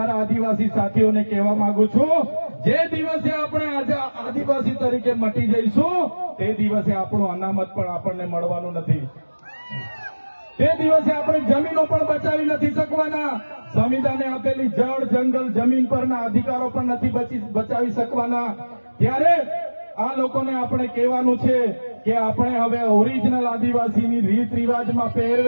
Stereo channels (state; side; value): inverted; both; correlation -1.00